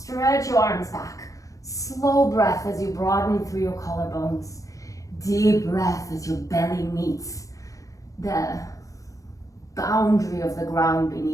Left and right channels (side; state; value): right; late; 0.16 ms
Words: your arms back. Slow breath as you broaden through your collarbones. Deep breath as your belly meets the boundary of the ground